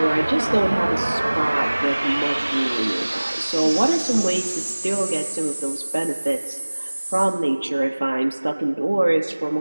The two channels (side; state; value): both; inverted; correlation -1.00